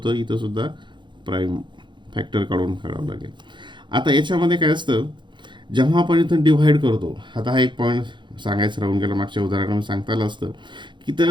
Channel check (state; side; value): late; left; 0.23 ms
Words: इथं सुद्धा प्राईम फॅक्टर काढावं लागेल. आता याच्यामध्ये काय असतं, जेव्हा आपण इथं डिव्हाइड करतो, आता हा एक पॉईंट सांगायचं राहून गेला, मागच्या उदाहरणामध्ये सांगता आलं असतं की